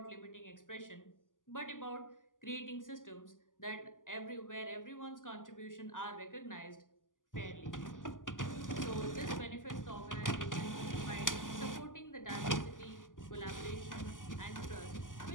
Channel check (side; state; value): right; late; 0.88 ms